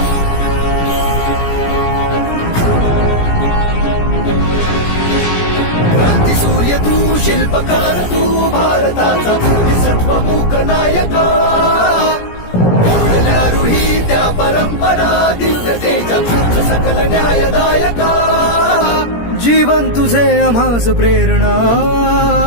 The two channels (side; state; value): right; late; 17 ms